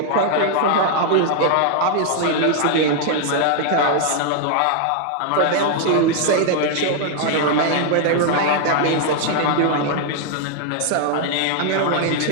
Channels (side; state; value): both; different; correlation 0.00